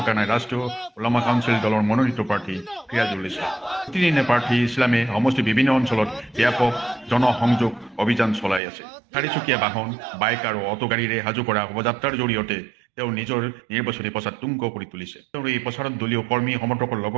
নাই ৰাষ্ট্ৰীয় ওলামা কাউন্সিল দলৰ মনোনীত প্ৰাৰ্থী ফিৰাজুল ইছলাম। প্ৰতিদিনে প্ৰাৰ্থী ইছলামে সমষ্টিৰ বিভিন্ন অঞ্চলত ব্যাপক জনসংযোগ অভিযান চলাই আছে। চাৰিচকীয়া বাহন, বাইক আৰু অটোগাড়ীৰে সাজু কৰা শোভাযাত্ৰাৰ জৰিয়তে তেওঁ নিজৰ নিৰ্বাচনী প্ৰচাৰ তুংগ কৰি তুলিছে। তেওঁৰ এই প্ৰচাৰত দলীয় কৰ্মী সমৰ্থকৰ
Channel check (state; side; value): drops out; left; at 8.6 s